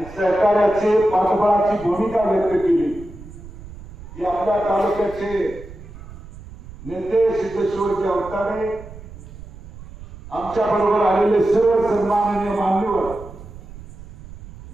सहकार्याचे पाठबळाची भूमिका व्यक्त केली की आपल्या तालुक्याचे नेते सिद्धेश्वरजी अवतारे आमच्या बरोबर आलेले सर्व सन्माननीय मान्यवर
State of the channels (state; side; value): noise; right; rumble, 16 dB below the sound